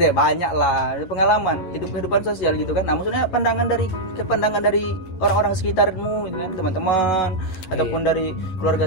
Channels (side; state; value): right; late; 11 ms